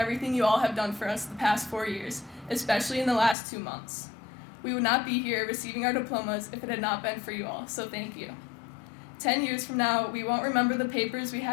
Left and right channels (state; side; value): drops out; right; at 3.4 s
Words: you all have done for us the past 4 years, especially in the last 2 months. We would not be here receiving our diplomas if it had not been for you all, so thank you. 10 years from now, we won't remember the papers we